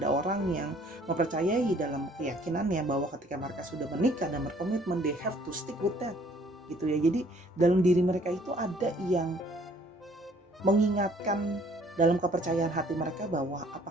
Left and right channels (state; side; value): normal; both; correlation 0.59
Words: orang yang mempercayai dalam keyakinannya bahwa ketika mereka sudah menikah dan berkomitmen, they have to stick with that gitu ya. Jadi dalam diri mereka itu ada yang mengingatkan dalam kepercayaan hati mereka bahwa